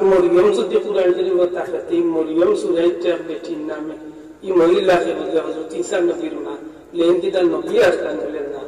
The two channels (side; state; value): both; identical; correlation 1.00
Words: মরিয়ম যদি কোরআন শরীফ থাকে এই মরিয়ম সূরাইটার বেটির নামে এই মহিলাকে বলে হযরত ঈসা নবীর মা, লেনদিদা নবী আসলেন বলেন না।